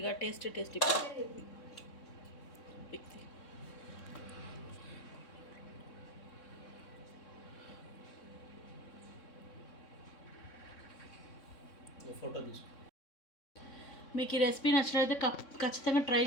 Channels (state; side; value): late; right; 3.6 ms